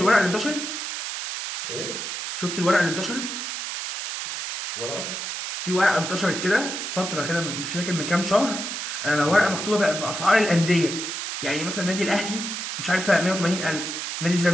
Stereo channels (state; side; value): noise; right; hiss, 5 dB below the sound